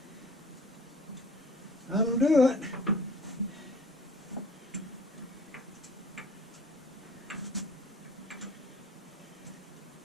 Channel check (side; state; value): both; normal; correlation 0.49